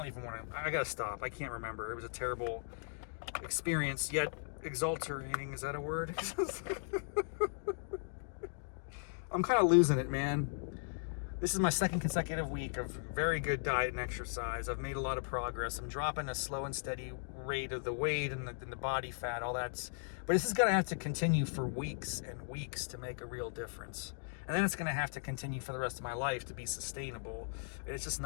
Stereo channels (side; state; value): right; silent; digital silence